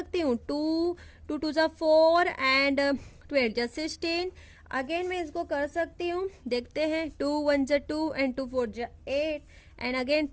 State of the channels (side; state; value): both; identical; correlation 1.00